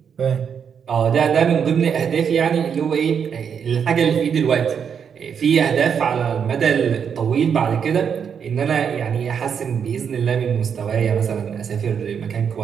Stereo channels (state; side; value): quieter; left; 7.3 dB